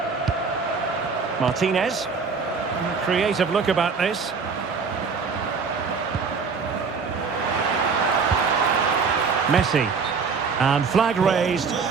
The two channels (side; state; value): left; quieter; 5.3 dB